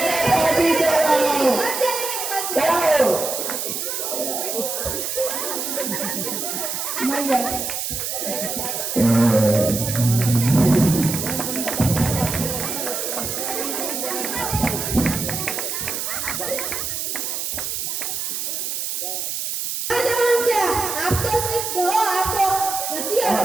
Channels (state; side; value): noise; right; hiss, 3 dB below the sound